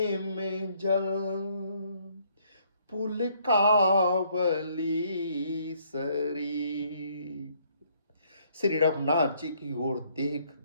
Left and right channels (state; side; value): inverted; both; correlation -0.66